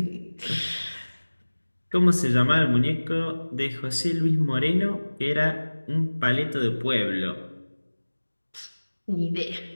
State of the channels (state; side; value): inverted; both; correlation -1.00